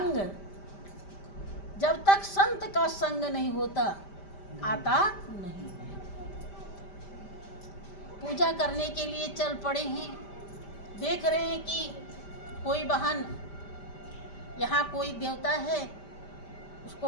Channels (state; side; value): late; right; 5.1 ms